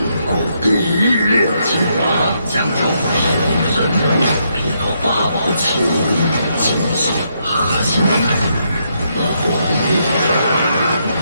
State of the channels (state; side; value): inverted; both; correlation -0.77